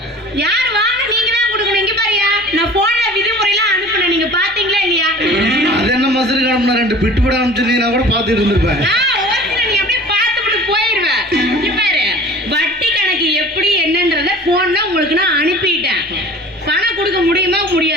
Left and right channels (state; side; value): normal; both; correlation 0.43